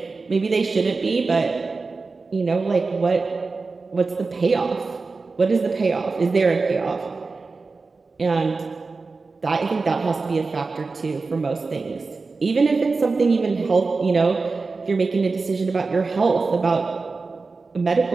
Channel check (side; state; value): left; quieter; 4.1 dB